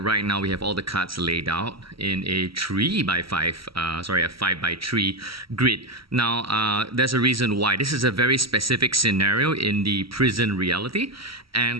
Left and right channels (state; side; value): late; left; 0.75 ms